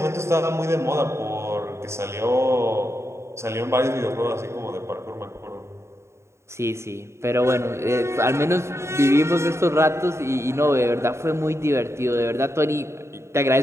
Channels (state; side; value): late; left; 0.13 ms